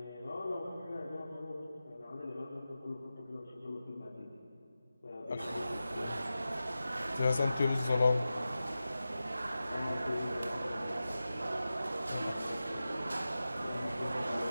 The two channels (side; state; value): both; inverted; correlation -0.93